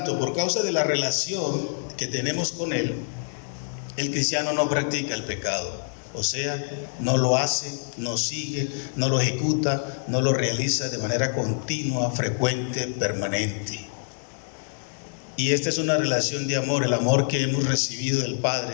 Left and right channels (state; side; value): silent; right; 61 dB below the other